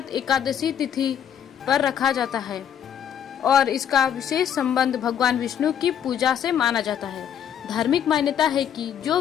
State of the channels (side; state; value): right; quieter; 9.1 dB